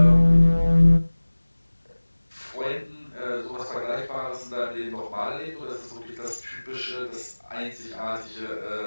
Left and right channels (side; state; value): both; inverted; correlation -1.00